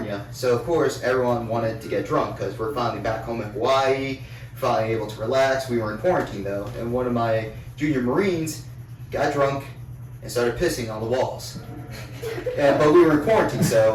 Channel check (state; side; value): identical; both; correlation 1.00